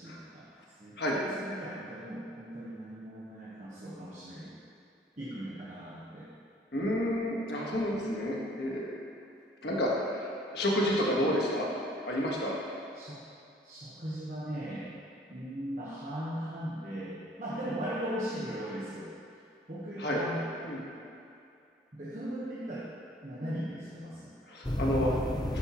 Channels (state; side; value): normal; both; correlation 0.56